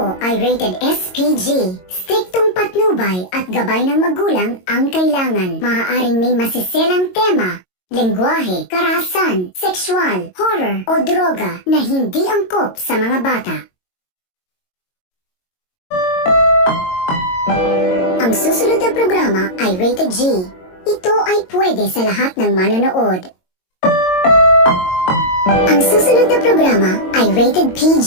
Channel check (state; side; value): late; right; 22 ms